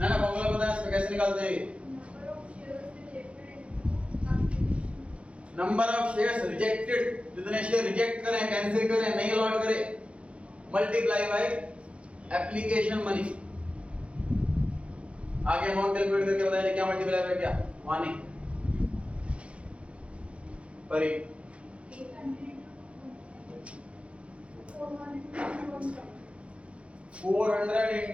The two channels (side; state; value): left; late; 0.061 ms